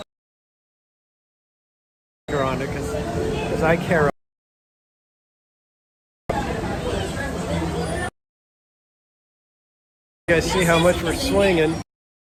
On it because I care. You guys see how much we're swinging.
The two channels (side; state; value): both; identical; correlation 1.00